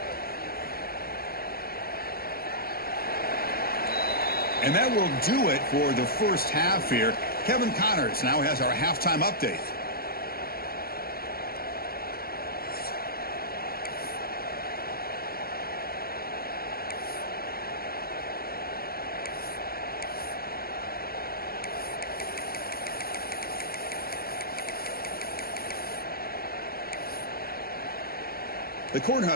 And that will do it for the first half here. Kevin Connors now has our halftime update. The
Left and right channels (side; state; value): right; late; 0.44 ms